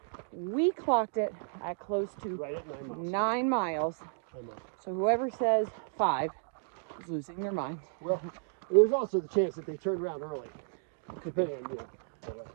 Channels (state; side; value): silent; left; digital silence